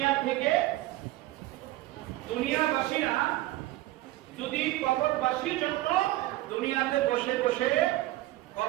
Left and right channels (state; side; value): quieter; left; 17.0 dB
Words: থেকে দুনিয়াবাসীরা যদি কবরবাসীর জন্য দুনিয়াতে বসে বসে